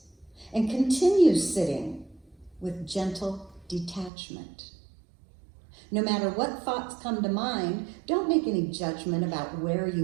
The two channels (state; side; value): drops out; left; at 4.1 s